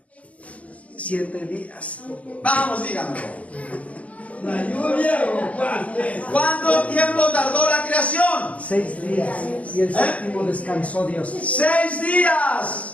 7 días. Vamos, díganmelo. La lluvia o ¿Cuánto tiempo tardó la creación? 6 días. Y el séptimo descansó Dios. 6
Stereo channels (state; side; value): late; right; 0.066 ms